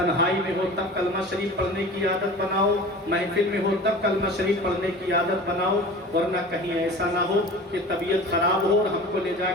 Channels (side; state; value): both; normal; correlation 0.38